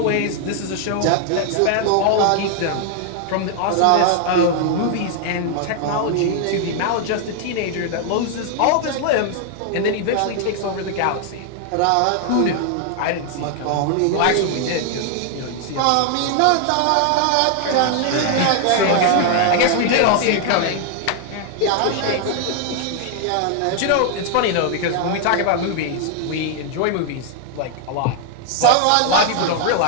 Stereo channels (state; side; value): different; both; correlation 0.00